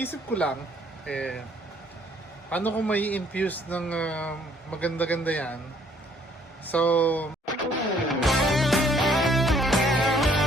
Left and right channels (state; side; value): normal; both; correlation 0.63